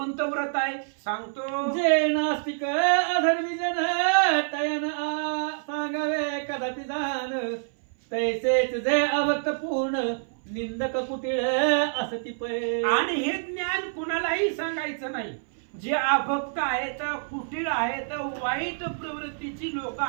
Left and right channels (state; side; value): silent; left; 59 dB below the other